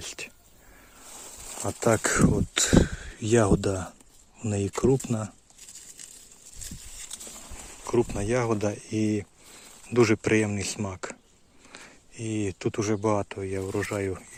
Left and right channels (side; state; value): both; identical; correlation 1.00